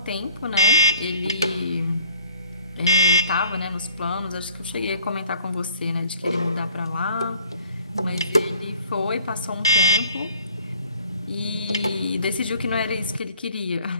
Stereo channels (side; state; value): both; inverted; correlation -0.55